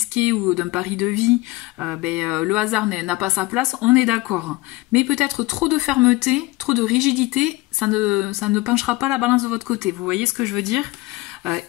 ou d'un pari de vie, le hasard n'a pas sa place, on est d'accord. Mais peut-être trop de fermeté, trop de rigidité, ça ne penchera pas la balance de votre côté. Vous voyez ce que je veux dire ?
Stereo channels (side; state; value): right; quieter; 20.9 dB